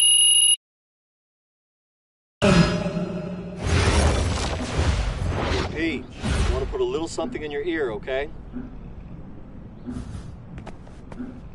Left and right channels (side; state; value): both; identical; correlation 1.00